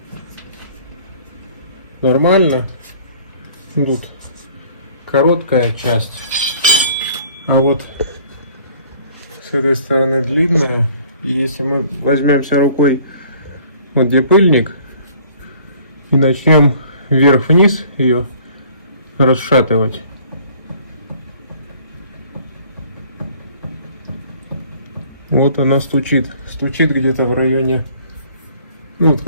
нормально. Тут короткая часть, а вот с этой стороны длинная. И если мы возьмемся рукой вот где пыльник и начнем вверх-вниз ее расшатывать, вот она стучит где-то в районе, ну вот,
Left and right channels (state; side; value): inverted; both; correlation -0.54